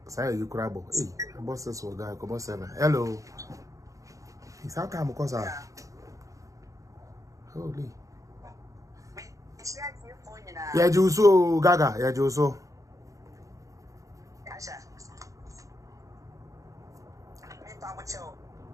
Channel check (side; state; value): left; late; 0.16 ms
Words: you crabo. Hey, boss says so guy come 7. Hello. It's how time because holy. Yeah, Juso Gaga. Yeah, Juso.